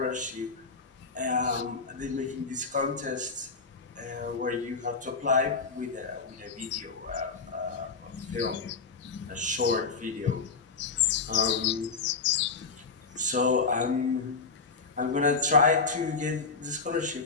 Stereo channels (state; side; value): quieter; right; 4.6 dB